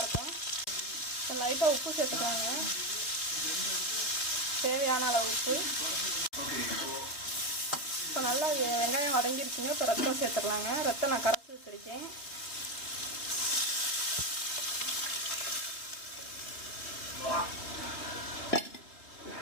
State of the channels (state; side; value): late; right; 3.5 ms